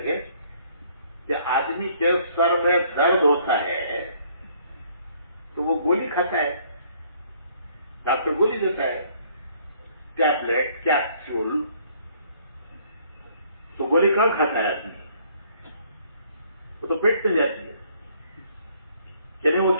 کہ آدمی کے سر میں درد ہوتا ہے تو وہ گولی کھاتا ہے، ڈاکٹر گولی دیتا ہے، ٹیبلٹ، کیپسول. تو گولی کہاں کھاتا ہے آدمی؟ وہ تو پیٹ میں جاتی ہے. یعنی وہ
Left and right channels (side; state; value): both; inverted; correlation -0.62